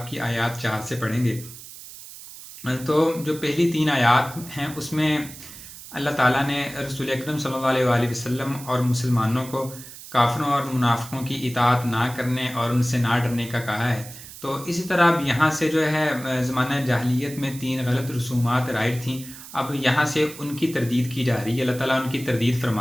کی آیات 4 سے پڑھیں گے. تو جو پہلی 3 آیات ہیں اس میں اللہ تعالیٰ نے رسول اکرم صلی اللہ علیہ وآلہ وسلم اور مسلمانوں کو کافروں اور منافقوں کی اطاعت نہ کرنے اور ان سے نہ ڈرنے کا کہا ہے. تو اسی طرح اب یہاں سے جو ہے زمانہ جاہلیت میں 3 غلط رسومات رائج تھیں. اب یہاں سے ان کی تردید کی جا رہی ہے. اللہ تعالیٰ ان کی تردید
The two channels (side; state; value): right; noise; hiss, 15 dB below the sound